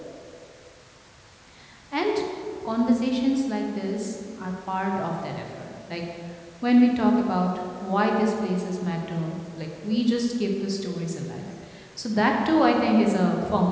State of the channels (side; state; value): both; identical; correlation 1.00